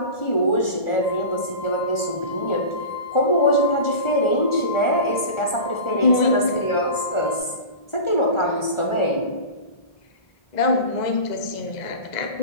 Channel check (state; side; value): late; right; 1.4 ms